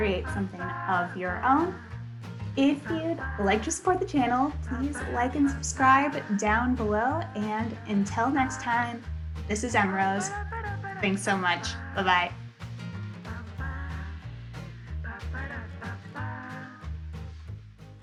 something of your own. If you'd like to support the channel, please like and subscribe down below. And until next time, this is Emrose. Thanks so much. Bye-bye.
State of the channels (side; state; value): both; identical; correlation 1.00